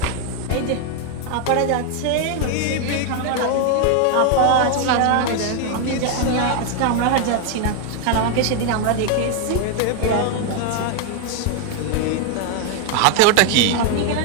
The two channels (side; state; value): both; different; correlation 0.01